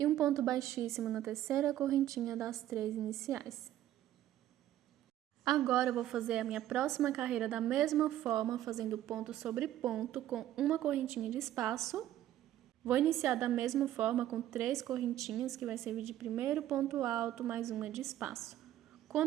um ponto baixíssimo na terceira correntinha das 3 iniciais. Agora, eu vou fazer a minha próxima carreira da mesma forma, fazendo ponto sobre ponto com uma correntinha de espaço. Vou iniciar da mesma forma com 3 correntinhas, que vai servir de primeiro ponto alto mais uma de espaço.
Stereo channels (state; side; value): quieter; left; 12.8 dB